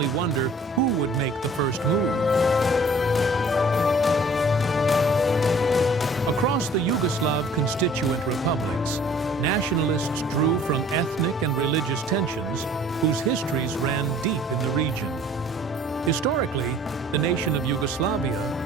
wonder who would make the first move. Across the Yugoslav constituent republics, nationalists drew from ethnic and religious tensions whose histories ran deep in the region. Historically, the nation of Yugoslavia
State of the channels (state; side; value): normal; both; correlation 0.52